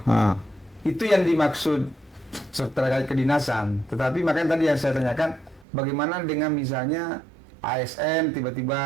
Itu yang dimaksud terkait kedinasan. Tetapi makanya tadi yang saya tanyakan, bagaimana dengan misalnya ASN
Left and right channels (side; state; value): left; drops out; at 5.7 s